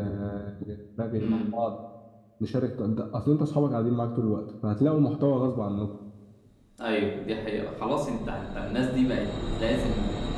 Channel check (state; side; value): identical; both; correlation 1.00